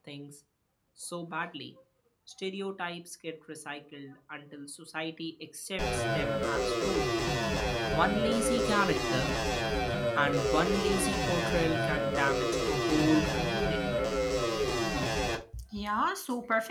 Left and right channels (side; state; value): both; identical; correlation 1.00